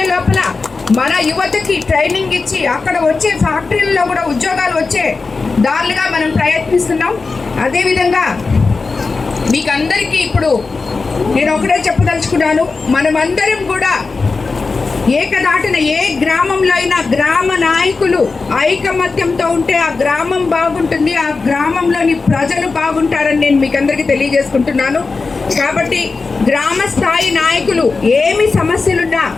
లోపల మన యువతకి ట్రైనింగ్ ఇచ్చి అక్కడ వచ్చే ఫ్యాక్టరీలలో కూడా ఉద్యోగాలు వచ్చే దారులుగా మనం ప్రయత్నిస్తున్నాం. అదేవిధంగా మీకు అందరికీ ఇప్పుడు నేను ఒకటే చెప్పదలుచుకున్నాను, మనమందరం కూడా ఏకదాటిన ఏ గ్రామంలో అయినా గ్రామ నాయకులు ఐకమత్యంతో ఉంటే ఆ గ్రామం బాగుంటుంది, ఆ గ్రామంలోని ప్రజలు బాగుంటారని నేను మీకు అందరికీ తెలియజేసుకుంటున్నాను. కాబట్టి గ్రామ స్థాయి నాయకులు ఏమి సమస్యలున్నా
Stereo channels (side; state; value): right; quieter; 4.2 dB